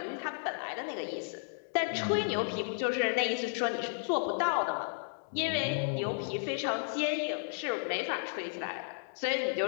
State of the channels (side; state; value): right; silent; digital silence